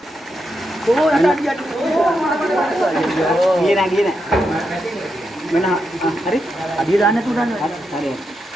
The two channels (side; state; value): both; normal; correlation 0.84